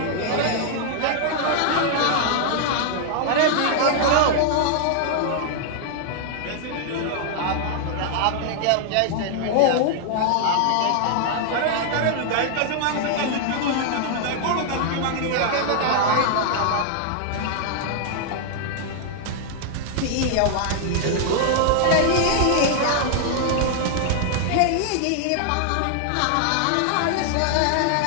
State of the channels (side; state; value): both; different; correlation -0.01